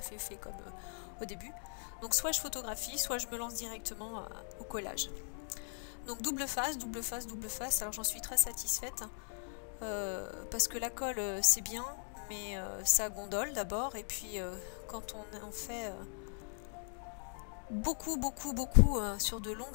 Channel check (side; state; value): right; silent; 52 dB below the other